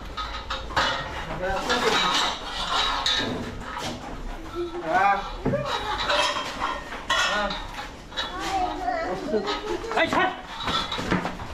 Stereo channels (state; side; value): identical; both; correlation 1.00